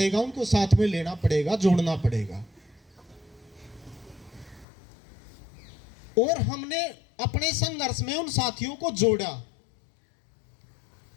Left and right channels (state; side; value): drops out; right; at 4.7 s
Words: उनको साथ में लेना पड़ेगा, जोड़ना पड़ेगा। और हमने अपने संघर्ष में उन साथियों को जोड़ा,